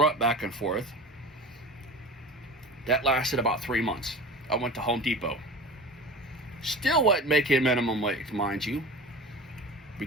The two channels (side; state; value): both; normal; correlation 0.35